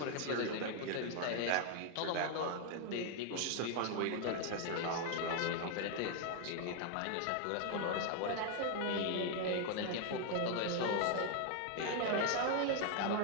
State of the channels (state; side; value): different; both; correlation 0.00